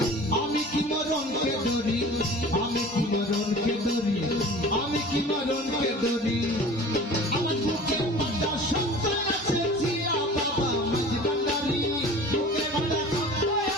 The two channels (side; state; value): both; normal; correlation 0.41